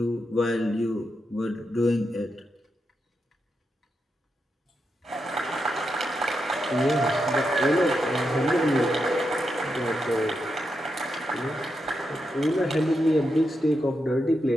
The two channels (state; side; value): normal; both; correlation 0.85